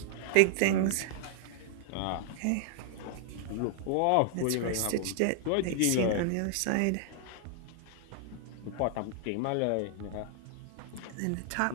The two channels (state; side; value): different; both; correlation 0.00